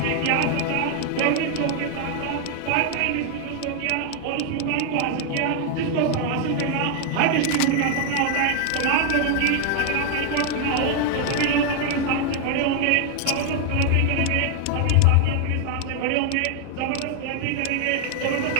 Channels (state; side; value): different; both; correlation 0.00